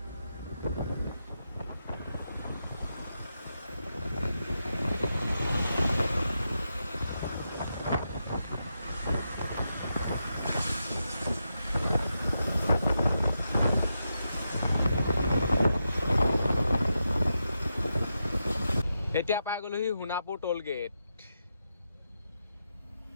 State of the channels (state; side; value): inverted; both; correlation -0.86